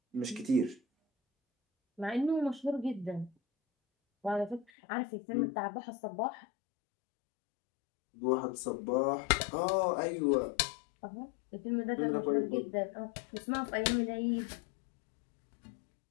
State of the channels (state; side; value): drops out; right; at 4.7 s